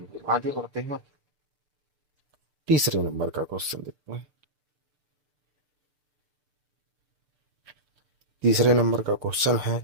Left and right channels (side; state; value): left; late; 6.7 ms